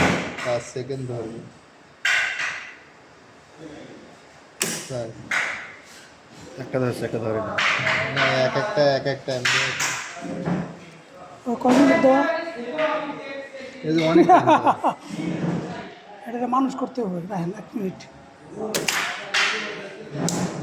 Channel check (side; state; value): both; identical; correlation 1.00